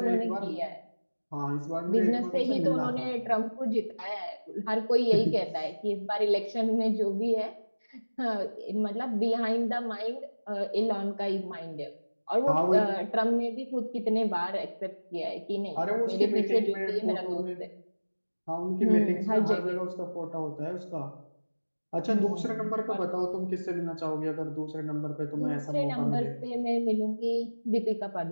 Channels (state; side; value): inverted; both; correlation -1.00